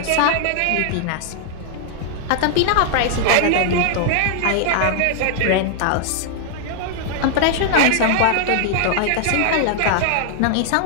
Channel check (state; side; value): different; both; correlation -0.01